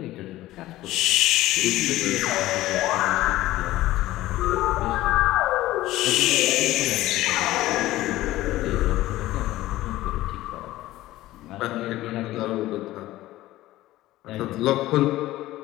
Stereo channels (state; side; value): quieter; right; 16.2 dB